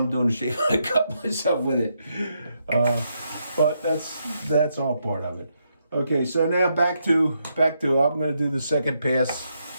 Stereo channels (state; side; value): inverted; both; correlation -0.80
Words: doing a shave, I cut myself with it. But that's all part of it. Okay, so now back to I'm going to do the second pass